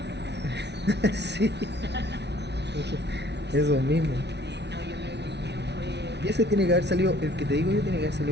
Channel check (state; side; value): late; left; 0.50 ms